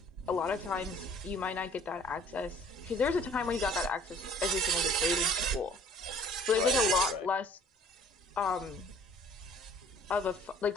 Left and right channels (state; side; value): normal; both; correlation 0.53